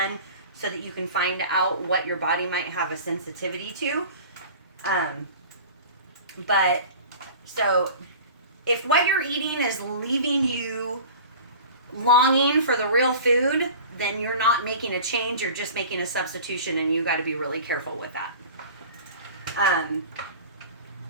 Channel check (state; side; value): inverted; both; correlation -0.39